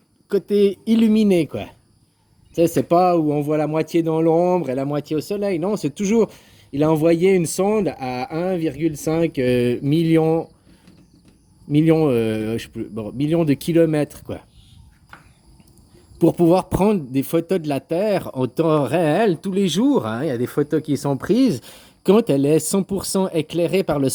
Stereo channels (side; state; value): both; identical; correlation 1.00